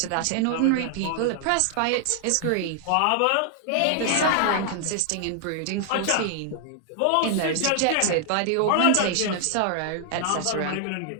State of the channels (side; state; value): both; different; correlation 0.00